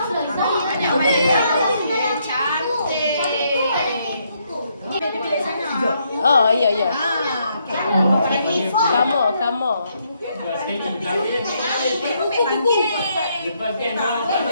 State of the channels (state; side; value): inverted; both; correlation -0.74